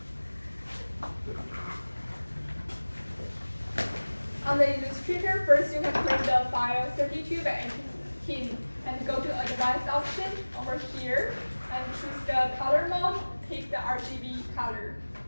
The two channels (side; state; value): both; inverted; correlation -1.00